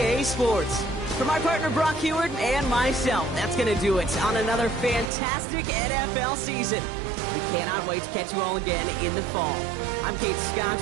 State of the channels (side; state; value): left; drops out; at 5.1 s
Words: Sports, for my partner Brock Heward and myself, that's going to do it on another fantastic NFL season. We cannot wait to catch you all again in the fall. I'm Kate Scott.